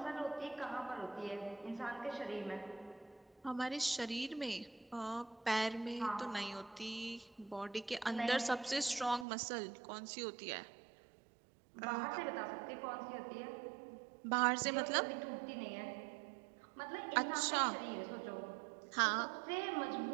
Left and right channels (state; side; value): drops out; left; at 9.2 s